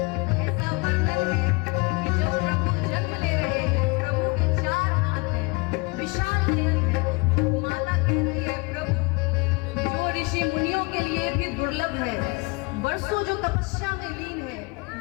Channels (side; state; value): right; quieter; 27.1 dB